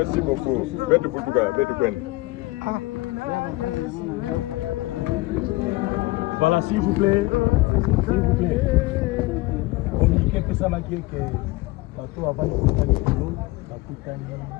beaucoup. Bête Koutuka, bête Kwen. Voilà, s'il vous plaît. Communiquez que ça m'a dit que bateau avant de couper les kilos, ça coûte un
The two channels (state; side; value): quieter; right; 21.0 dB